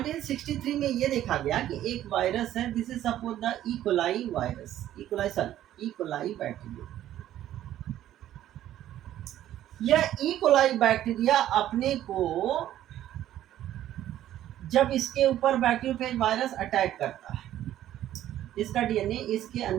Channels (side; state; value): left; quieter; 12.5 dB